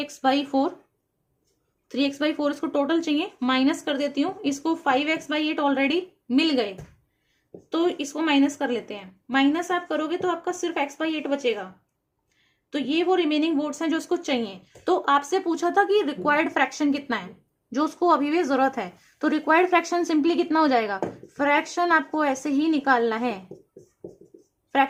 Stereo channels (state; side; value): identical; both; correlation 1.00